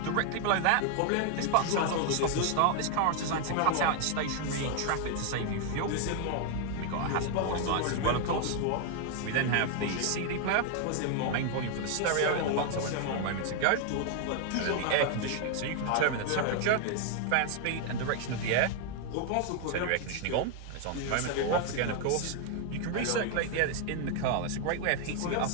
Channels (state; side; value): different; both; correlation 0.00